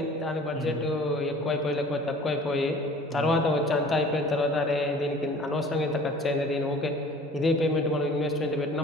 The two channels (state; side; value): normal; both; correlation 0.47